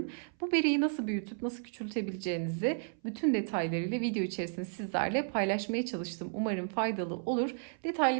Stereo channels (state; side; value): silent; left; 56 dB below the other